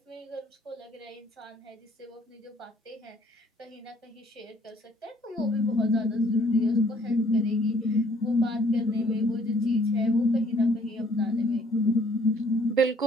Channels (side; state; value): both; normal; correlation 0.61